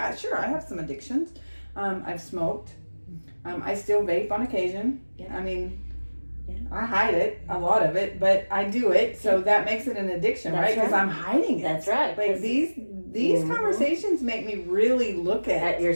have some addictions. I've smoked. I still vape on occasion. Yeah. I mean, I hide it, a lot of it, but I do it, so that makes it an addiction, That's right? Because right. I'm hiding it. That's right. Like, these conversations make me really look At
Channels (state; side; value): inverted; both; correlation -1.00